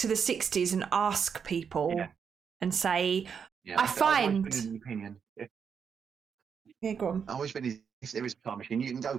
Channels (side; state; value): left; quieter; 6.8 dB